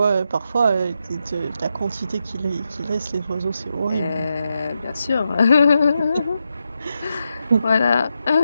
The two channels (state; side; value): inverted; both; correlation -0.86